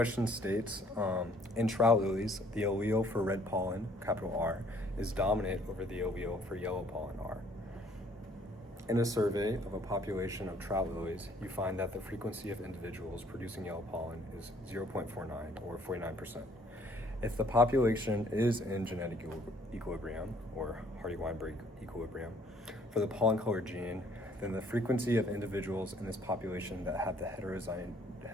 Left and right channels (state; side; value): normal; both; correlation 0.61